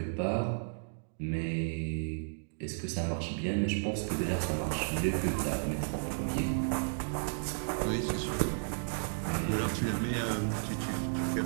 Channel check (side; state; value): left; silent; digital silence